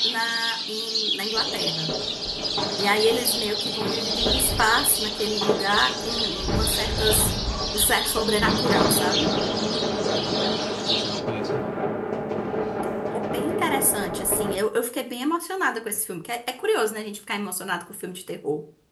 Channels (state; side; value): identical; both; correlation 1.00